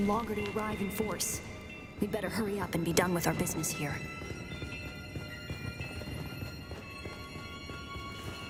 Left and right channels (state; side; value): identical; both; correlation 1.00